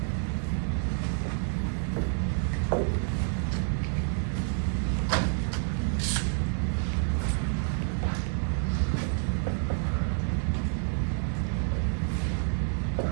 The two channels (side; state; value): left; silent; 59 dB below the other